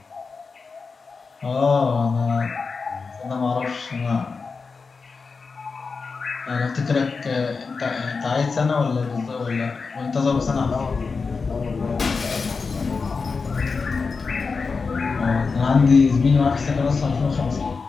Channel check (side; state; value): right; quieter; 4.7 dB